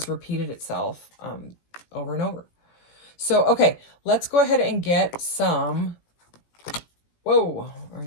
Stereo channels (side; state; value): right; late; 17 ms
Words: repeated itself over and over. So, okay, let's go ahead and get some... Whoa, I